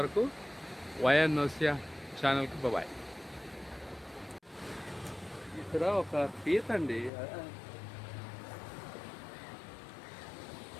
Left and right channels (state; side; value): drops out; right; at 7.1 s